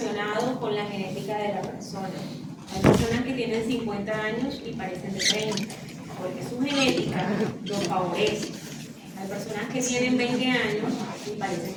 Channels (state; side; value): identical; both; correlation 1.00